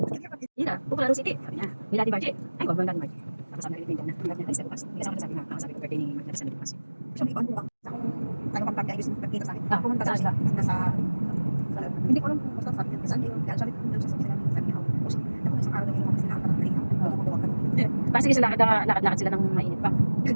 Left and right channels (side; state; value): both; inverted; correlation -1.00